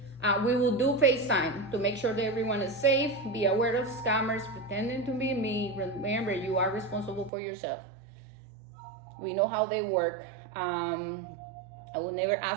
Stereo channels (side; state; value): left; drops out; at 7.3 s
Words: we will do FaceTime to make sure that everyone is safe. Be aware of scammers pretending to be me. Remember, you are responsible for yourself. We know how they work. I will never